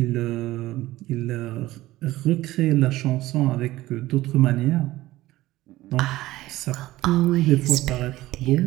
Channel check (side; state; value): left; quieter; 16.9 dB